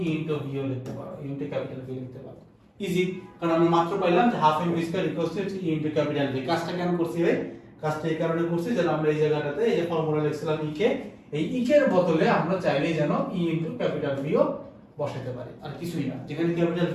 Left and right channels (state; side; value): identical; both; correlation 1.00